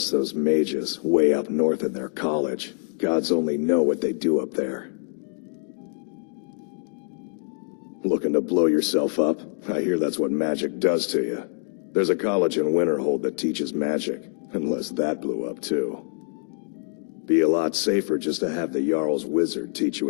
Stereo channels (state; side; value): silent; right; 57 dB below the other